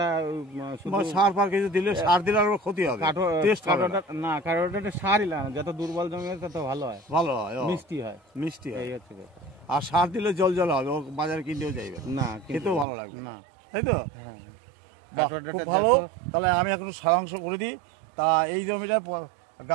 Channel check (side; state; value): left; drops out; at 12.9 s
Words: সার ফার কিছু দিলে, সার দিলে আর ক্ষতি হবে। না, কাটোয়া ডাটা সারই লাগে না, যত দুর্বল জমি হয় তত ভালো হয়, মিষ্টি হয়। এই হচ্ছে কথা। আর সার দিলে জল জল হবে, ও বাজারে কিনতেও যাইবে না, খেতেও ভালো লাগবে না, তাই তো? খুব ভালো। তাহলে আমি এখন সারাংশ করে দিই। তা এই জমিটায়